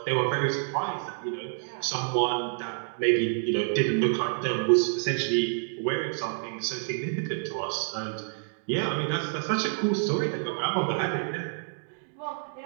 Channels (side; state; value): left; silent; digital silence